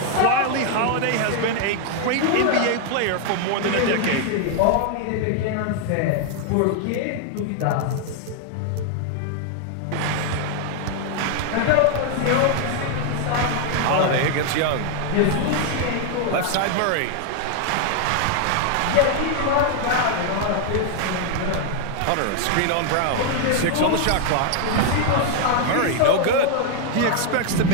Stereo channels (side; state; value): both; different; correlation 0.00